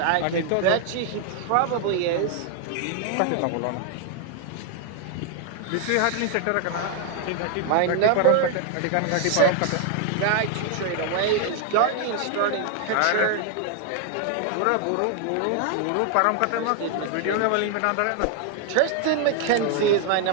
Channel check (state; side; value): different; both; correlation 0.00